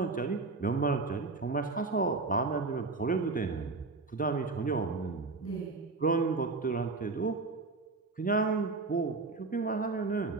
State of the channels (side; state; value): left; quieter; 3.8 dB